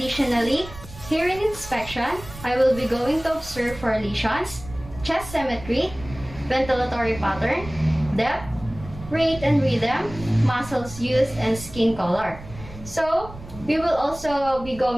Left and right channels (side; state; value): right; noise; rumble, 15 dB below the sound